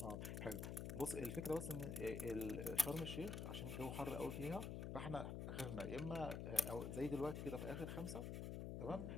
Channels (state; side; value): noise; left; hum, 3 dB below the sound